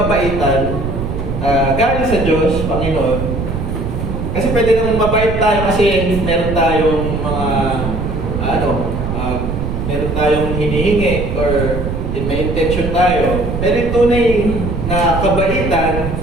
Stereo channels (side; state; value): right; noise; rumble, 3 dB below the sound